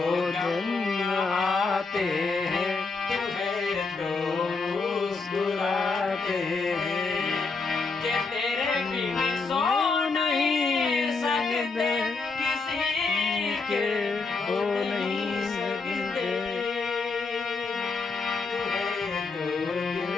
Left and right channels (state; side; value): quieter; right; 4.2 dB